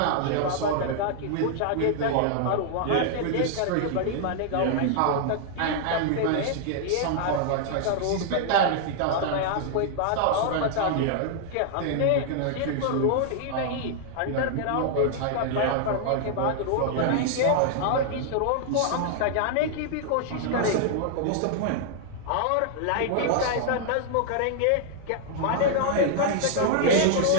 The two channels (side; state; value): both; different; correlation -0.01